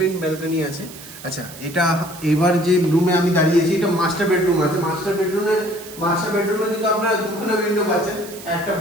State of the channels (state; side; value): noise; right; hiss, 16 dB below the sound